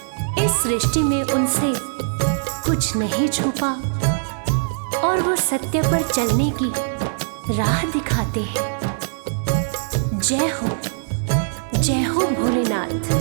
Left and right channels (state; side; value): silent; left; digital silence